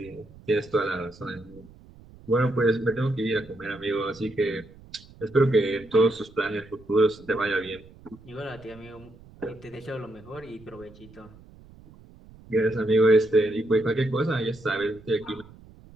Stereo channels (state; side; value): noise; right; rumble, 22 dB below the sound